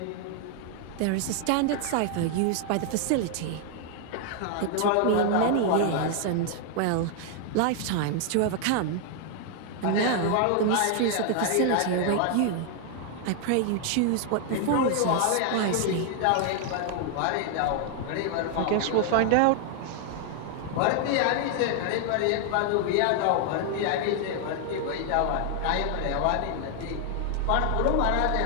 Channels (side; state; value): both; different; correlation 0.00